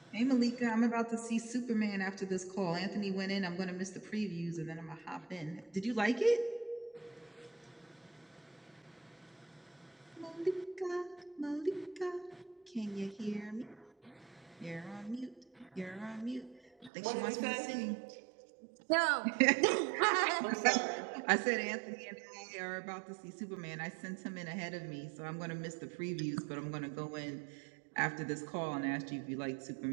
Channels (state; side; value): drops out; left; at 16.9 s